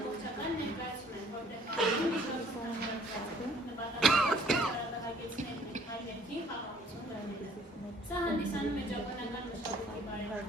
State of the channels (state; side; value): normal; both; correlation 0.57